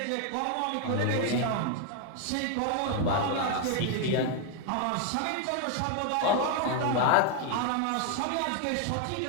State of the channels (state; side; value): different; both; correlation 0.01